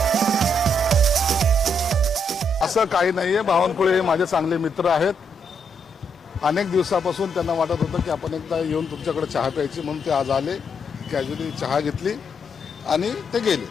असं काही नाहीये. बावनकुळे हे माझे चांगले मित्र आहेत. अनेक दिवसापासून त्यांना वाटत होतं की आपण एकदा येऊन तुमच्याकडे चहा प्यायची, म्हणून ते आज आले. कॅज्युअली चहा घेतली आणि ते गेले.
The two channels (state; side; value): normal; both; correlation 0.77